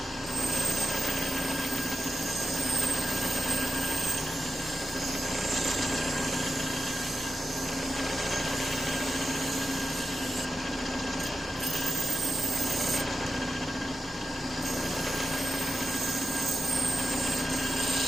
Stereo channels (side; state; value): both; normal; correlation 0.89